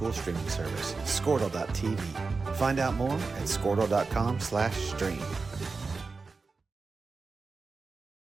streaming service, Squirtle.tv. Find out more at Squirtle.com/stream.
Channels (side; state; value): left; quieter; 4.3 dB